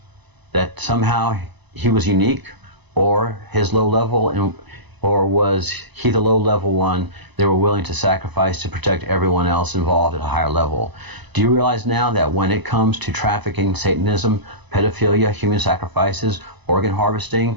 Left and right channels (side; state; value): left; late; 1.0 ms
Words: That somehow he was unique, or his low level, or was he the low level one they were willing to sacrifice to protect everyone else involved at a higher level? Do you realize now that when it comes to trafficking, Satanism, pedophilia, human sacrifices, organ harvesting,